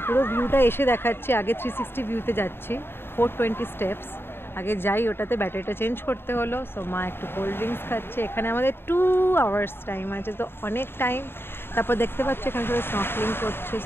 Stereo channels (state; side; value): late; right; 0.11 ms